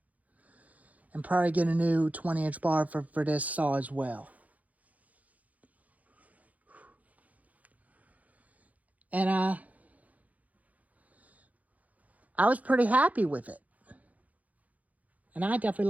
And probably get a new 20-inch bar for this saw as well. And I was pretty happy with it. And I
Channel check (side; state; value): left; late; 0.074 ms